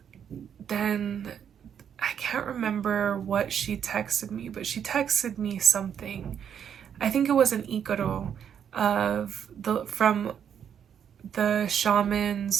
then I can't remember what she texted me, but she texted me something. I think it was an ikaro from the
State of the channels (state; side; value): quieter; left; 8.4 dB